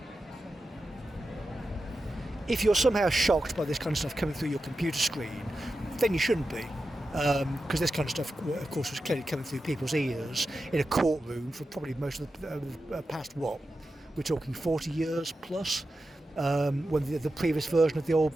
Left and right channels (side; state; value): both; normal; correlation 0.91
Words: If you're somehow shocked by this kind of stuff coming through your computer screen, then you shouldn't be. Because this kind of stuff, of course, was clearly coming through people's ears in a courtroom for probably most of the past, we're talking 40 years plus, when the previous version of